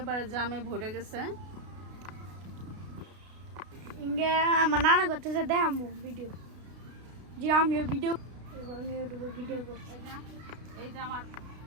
জামে ভরে গেছে। ইঙ্গে আমার নানা করতেছে দেখাবো ভিডিও, যে আমিও ভিডিও এবং ইউটিউবে ভিডিও করছি। এই যে আমার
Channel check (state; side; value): late; left; 32 ms